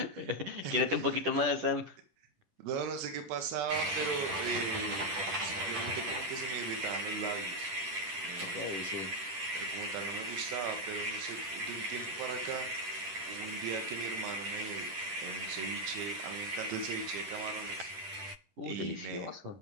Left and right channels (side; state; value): left; late; 10 ms